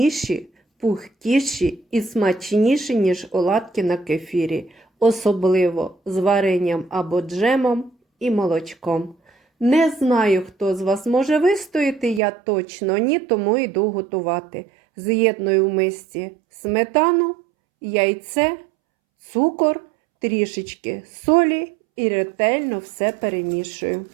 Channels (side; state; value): left; drops out; at 12.2 s